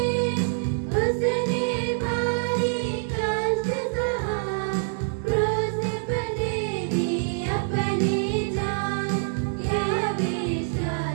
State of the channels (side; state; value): left; silent; digital silence